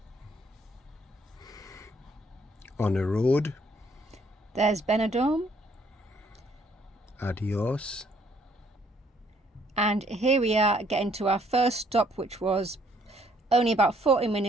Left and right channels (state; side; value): normal; both; correlation 0.65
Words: On a road. There's Benidorm. Adios. And here we are getting to our first stop, which was only about 40